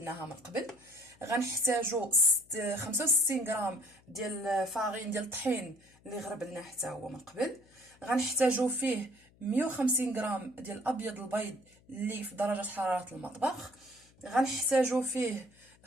من قبل، غنحتاجو 65 غرام ديال فارين ديال الطحين اللي غربلناه حتى هو من قبل، غنحتاجو فيه 150 غرام ديال ابيض البيض اللي في درجه حراره المطبخ، غنحتاجو فيه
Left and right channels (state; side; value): noise; left; hum, 29 dB below the sound